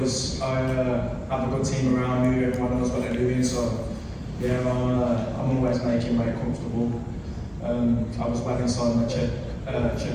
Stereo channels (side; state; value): both; identical; correlation 1.00